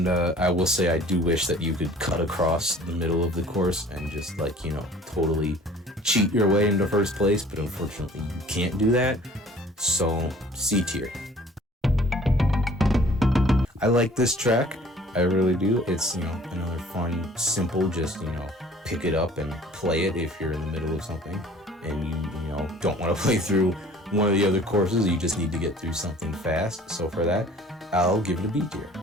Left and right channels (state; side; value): normal; both; correlation 0.51